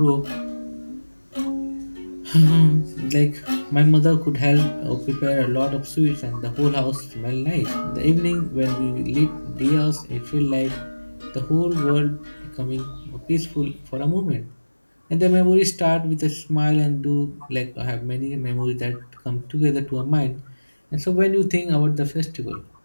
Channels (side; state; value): both; inverted; correlation -1.00